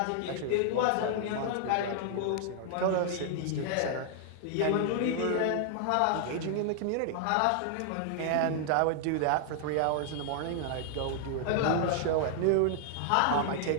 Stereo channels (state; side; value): different; both; correlation 0.00